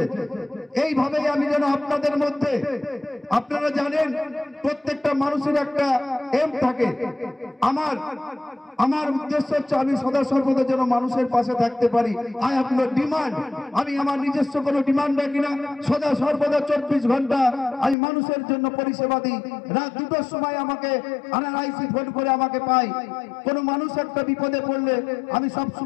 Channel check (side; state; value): right; drops out; at 17.9 s